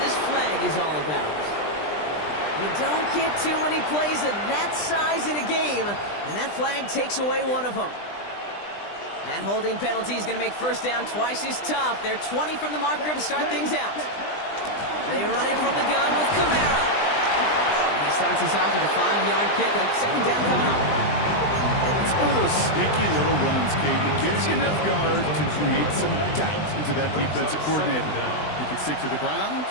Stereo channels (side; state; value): right; late; 20 ms